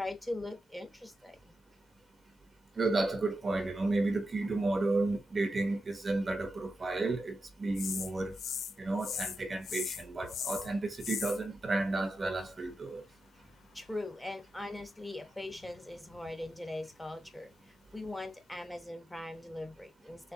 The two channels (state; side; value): normal; both; correlation 0.89